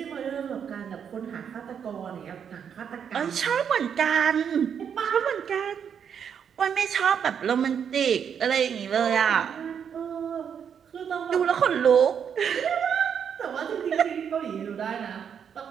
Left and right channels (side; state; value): left; quieter; 7.7 dB